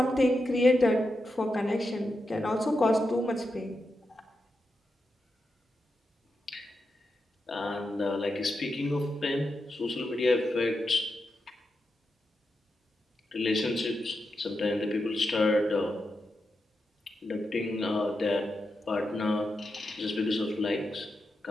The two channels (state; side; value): normal; both; correlation 0.87